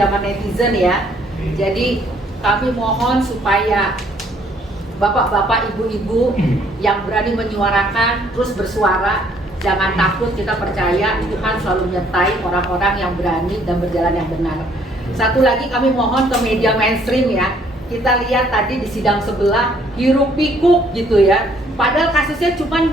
netizen ya. Jadi kami mohon supaya bapak-bapak, ibu-ibu yang berani menyuarakan, terus bersuara, jangan takut. Kita percaya Tuhan selalu menyertai orang-orang yang berani dan berjalan yang benar. Satu lagi kami mohon ke media mainstream ya. Kita lihat tadi di sidang sebelah hiruk pikuk gitu ya. Padahal kasusnya cuma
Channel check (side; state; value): both; normal; correlation 0.64